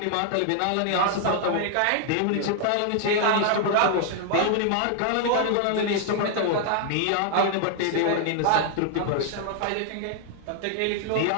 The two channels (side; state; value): both; different; correlation 0.00